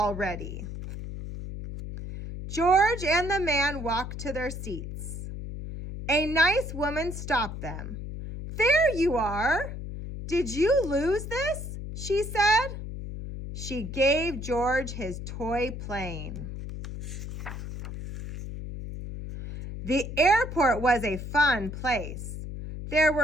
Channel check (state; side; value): noise; left; hum, 8 dB below the sound